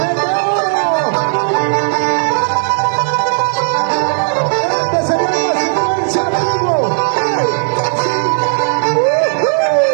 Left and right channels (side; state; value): left; silent; digital silence